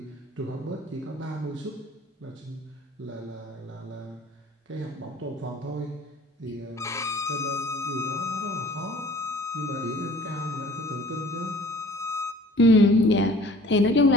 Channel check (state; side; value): normal; both; correlation 0.50